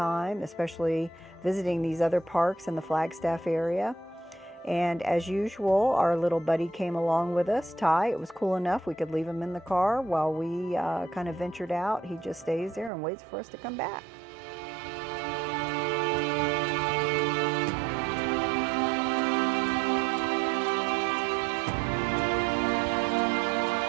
especially visiting these other parks in the Flagstaff area. And as usual, our little buddy came along with us, Ty. It was cool enough we could leave him in the car while we kind of ventured out. He just stays there and waits for us to come back.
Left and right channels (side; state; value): left; drops out; at 12.9 s